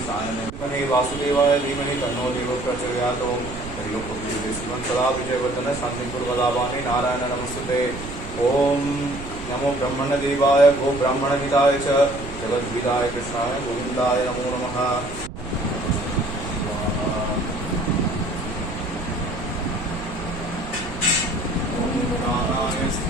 सायनं वासुदेवाय धीमहि तन्नो देवः प्रचोदयात् सदा विजयवर्धन शांतिपुरवदावाने नारायण नमस्ते ओम नमो ब्रह्मण देवाय गो ब्राह्मण हिताय च जगद्विदाय कृष्णाय गोविंदाय नमो नमः ओम प्राणाय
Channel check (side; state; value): right; noise; rumble, 11 dB below the sound